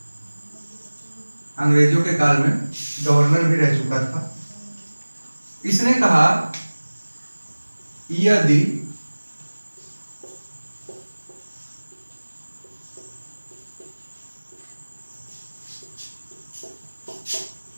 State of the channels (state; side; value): inverted; both; correlation -1.00